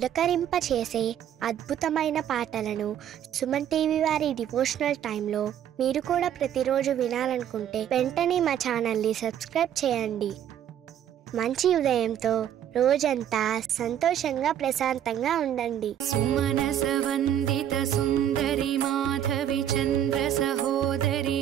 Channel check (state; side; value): quieter; left; 10.2 dB